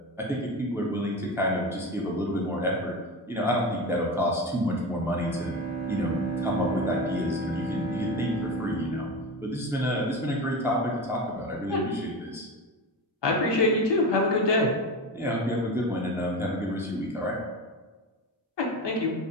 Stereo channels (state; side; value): normal; both; correlation 0.24